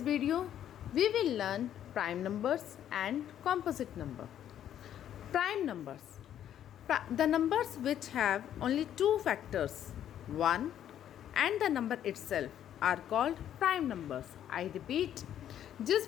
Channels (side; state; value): right; quieter; 10.6 dB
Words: video, we will learn prime numbers and composite number. Prime numbers. The numbers which have only two factors, 1 and the number itself, are called prime numbers. I repeat, जिस